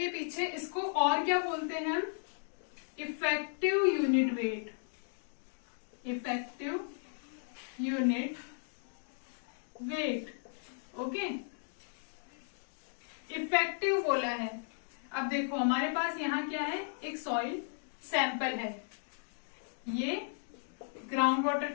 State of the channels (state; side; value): silent; right; digital silence